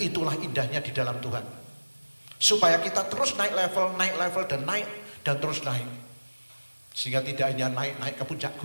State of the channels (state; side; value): inverted; both; correlation -1.00